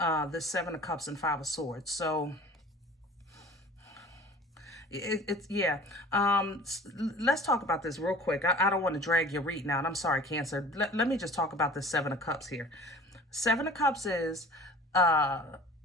Seven of Cups and Five of Swords. So yeah. Let's talk about this real quick. I don't want to drag your reading out. I'm sorry, Cancer. Let me just talk about this Seven of Cups here. Seven of Cups is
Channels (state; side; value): normal; both; correlation 0.44